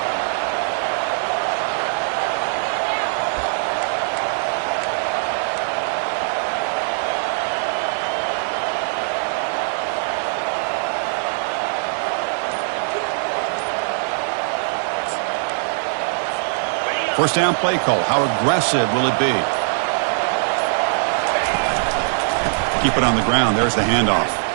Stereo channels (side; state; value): left; silent; digital silence